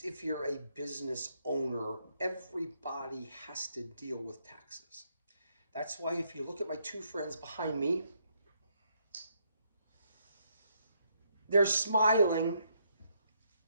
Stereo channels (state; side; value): inverted; both; correlation -0.74